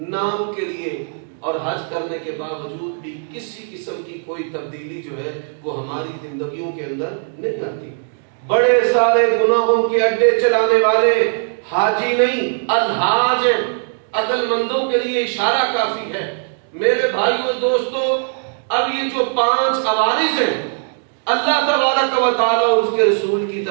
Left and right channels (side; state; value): left; silent; 62 dB below the other